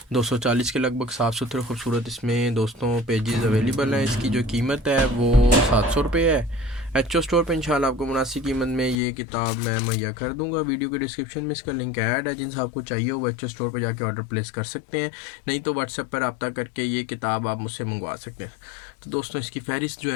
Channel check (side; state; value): right; drops out; at 9.0 s